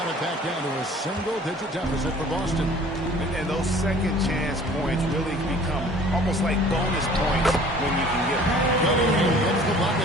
it back down to a single-digit deficit for Boston. And those second chance points really become almost like bonus points when you can get them. Cunningham gets the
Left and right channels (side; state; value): both; normal; correlation 0.50